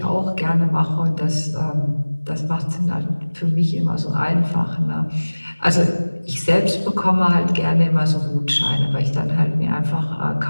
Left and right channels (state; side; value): inverted; both; correlation -1.00